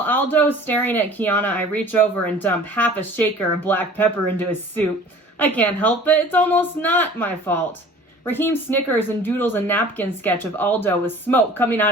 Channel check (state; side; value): normal; both; correlation 0.46